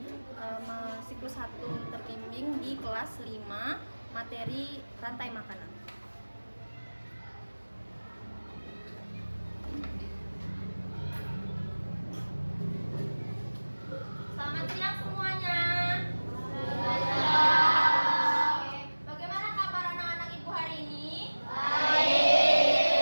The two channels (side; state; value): both; inverted; correlation -1.00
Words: siklus 1 terbimbing di kelas 5, materi rantai makanan. Selamat siang semuanya. Oke, bagaimana kabar anak-anak ibu hari ini? Baik.